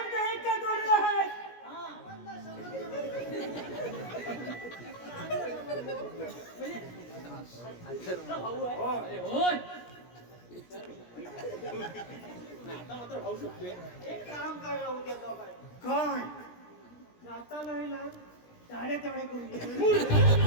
इतका जोडला आहे. तुमचा भाऊ आहे हो. अरे होय एक काम करा उद्या दोघांनी. काय? जाता नाही ना साडे तेवढे करून घे.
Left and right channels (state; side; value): late; right; 17 ms